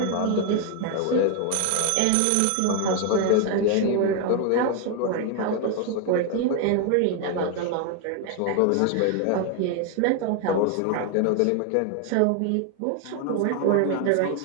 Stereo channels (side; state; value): both; different; correlation 0.01